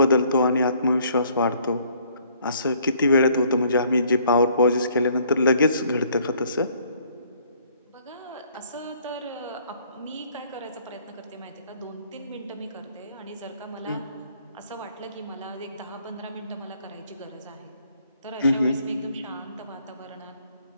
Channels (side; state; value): both; inverted; correlation -0.62